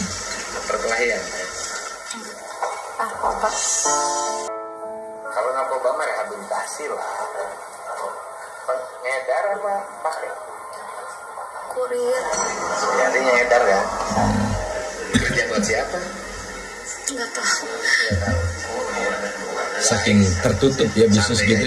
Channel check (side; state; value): both; identical; correlation 1.00